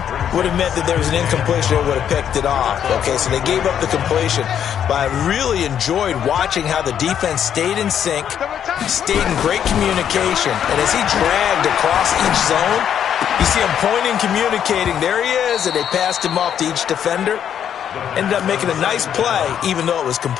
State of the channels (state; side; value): quieter; right; 9.1 dB